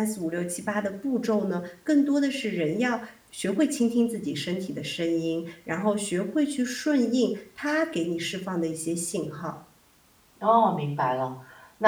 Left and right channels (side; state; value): both; identical; correlation 1.00